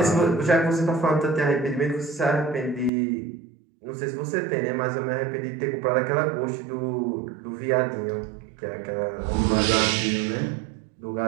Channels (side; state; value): left; drops out; at 2.9 s